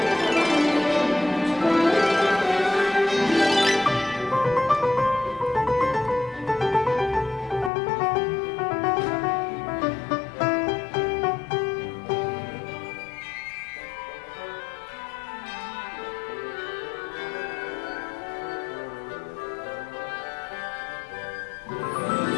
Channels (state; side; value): drops out; right; at 7.7 s